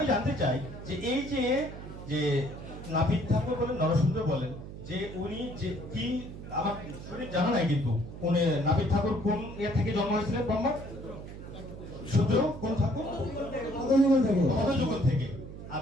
জানতে চাই যে এই যে নাপিত ঠাকুর বলেন, নরসুন্দর বলেন, যে উনি যে কি, আমার শরীর জানা নাই, কিন্তু উনি নাপিত ঠাকুর কোন এর থেকে জন্ম হয়েছিলেন? ব্রহ্মা শূদ্র কোন ঠাকুর? কত যুগ থেকে? কত যুগ থেকে?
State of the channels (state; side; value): noise; right; hum, 12 dB below the sound